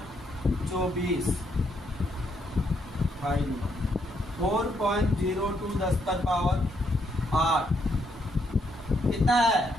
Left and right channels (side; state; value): both; normal; correlation 0.75